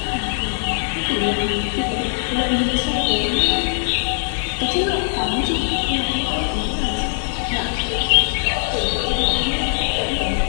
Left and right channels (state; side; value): silent; right; digital silence